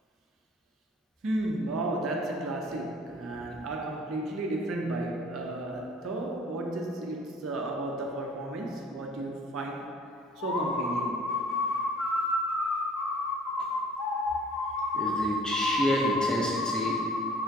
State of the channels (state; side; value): normal; both; correlation 0.51